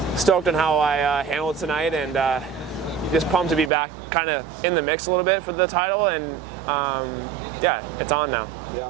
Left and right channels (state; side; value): drops out; left; at 3.7 s